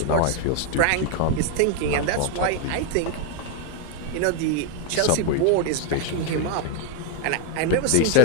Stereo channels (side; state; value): both; different; correlation 0.01